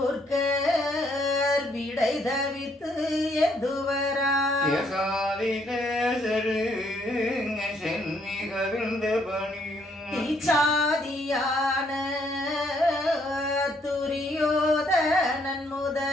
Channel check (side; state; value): both; normal; correlation 0.69